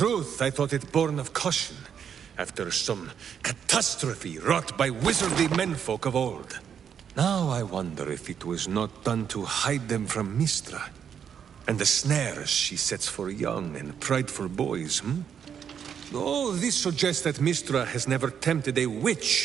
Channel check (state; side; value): quieter; left; 7.9 dB